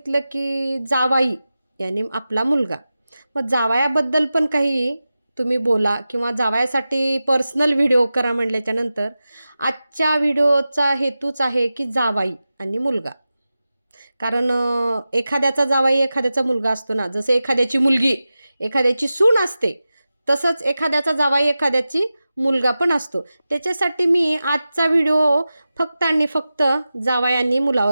की जावाई यानी आपला मुलगा. मग जावयाबद्दल पण काही तुम्ही बोला किंवा जावयासाठी पर्सनल व्हिडिओ करा म्हटल्याच्यानंतर आजच्या व्हिडिओचा हेतूच आहे की जावाई आणि मुलगा. कारण एखाद्याचा जावाई एखाद्याचा मुलगा असतो ना, जसं एखाद्याची मुलगी एखाद्याची सून असते, तसंच एखाद्याचा जावाई एखाद्याची मुलगा पण असतो. त्याच्यासाठी मी आजचा व्हिडिओ फक्त आणि फक्त जावई आणि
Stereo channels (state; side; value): inverted; both; correlation -0.94